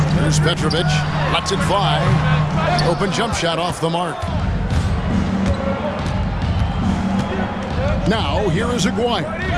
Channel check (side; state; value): both; identical; correlation 1.00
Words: There's Petrovic. Lets it fly. Open jump shot off the mark. Now, here is Aguirre.